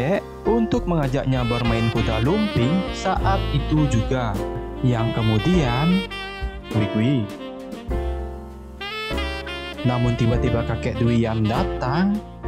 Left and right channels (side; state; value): both; identical; correlation 1.00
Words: untuk mengajaknya bermain kuda lumping saat itu juga. Yang kemudian, wih. Namun tiba-tiba kakek Duian datang